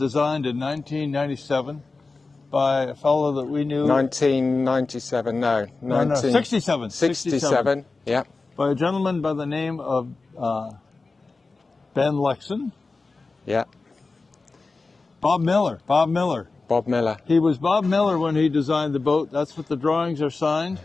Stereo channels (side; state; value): right; quieter; 3.8 dB